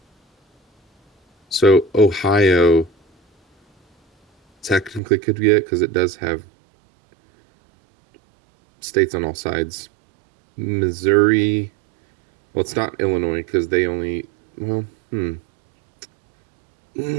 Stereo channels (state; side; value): drops out; left; at 5.0 s